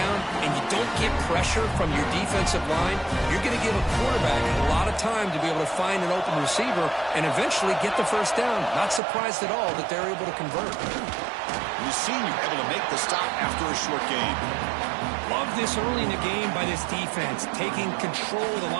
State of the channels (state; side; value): drops out; left; at 9.0 s